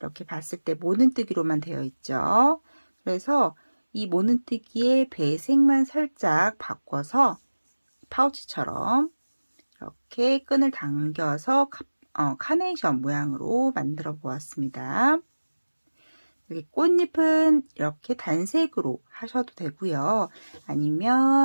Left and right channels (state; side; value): inverted; both; correlation -1.00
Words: 봤을 때 모눈뜨기로만 되어 있죠. 그래서 이 모눈뜨기의 배색만 살짝 바꿔서 파우치처럼 이렇게 끈을 당겨서 카네이션 모양으로 만들어 보았습니다. 여기 꽃잎은 이렇게 단색으로 하셔도 되고요.